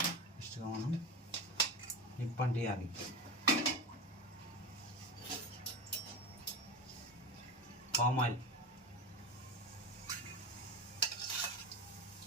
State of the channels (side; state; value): both; normal; correlation 0.24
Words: ఇష్టంగా మనం నిప్పంటియాలి. పామ్ ఆయిల్,